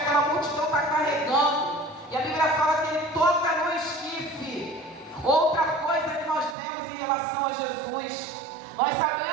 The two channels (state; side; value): drops out; left; at 6.6 s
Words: multidão está carregando. E a Bíblia fala que Ele toca no esquife. Outra coisa que nós vemos em relação a Jesus, nós